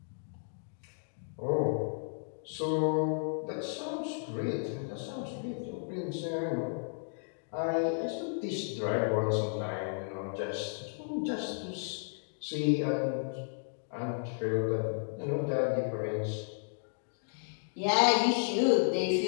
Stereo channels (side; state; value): right; silent; digital silence